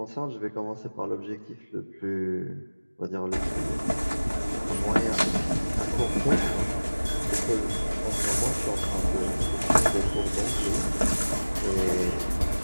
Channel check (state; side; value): inverted; both; correlation -1.00